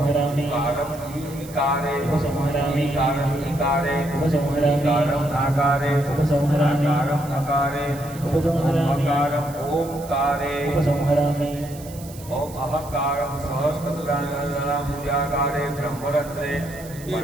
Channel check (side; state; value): right; noise; hiss, 18 dB below the sound